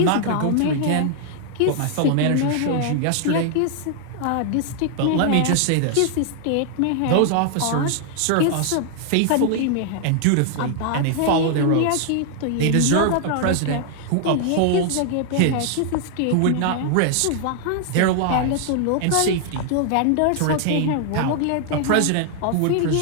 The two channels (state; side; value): different; both; correlation 0.00